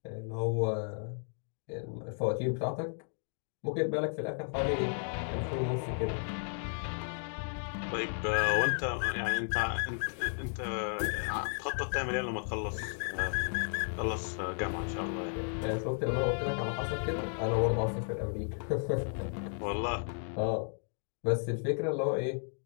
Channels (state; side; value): silent; right; 55 dB below the other